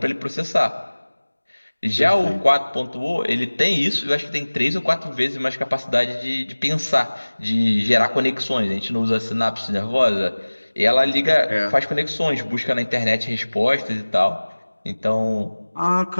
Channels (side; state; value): both; inverted; correlation -1.00